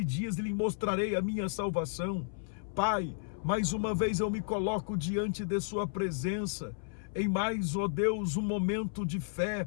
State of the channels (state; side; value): silent; right; 56 dB below the other